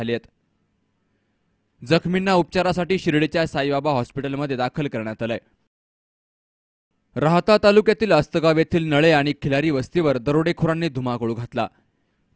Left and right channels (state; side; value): identical; both; correlation 1.00